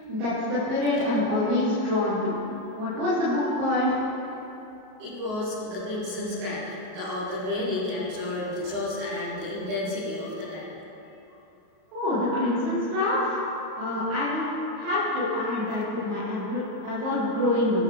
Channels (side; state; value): left; late; 38 ms